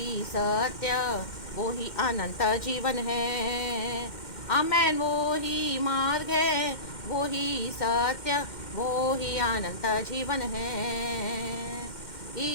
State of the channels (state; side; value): late; right; 2.1 ms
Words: सत्य, वो ही अनंत जीवन है। आमेन। वो ही मार्ग है, वो ही सत्य, वो ही अनंत जीवन है।